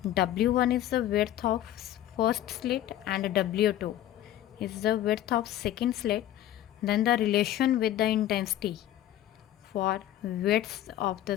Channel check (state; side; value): quieter; right; 12.6 dB